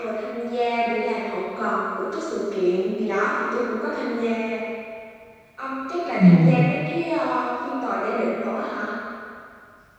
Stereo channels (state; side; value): identical; both; correlation 1.00